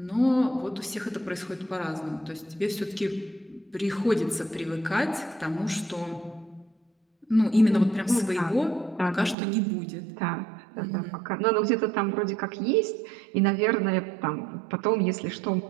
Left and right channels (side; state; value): left; drops out; at 9.3 s